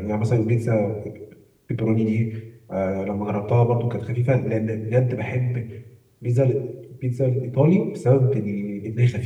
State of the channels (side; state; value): both; identical; correlation 1.00